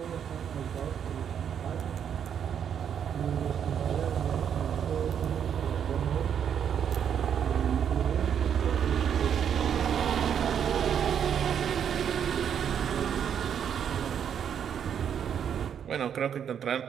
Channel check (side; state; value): left; quieter; 8.4 dB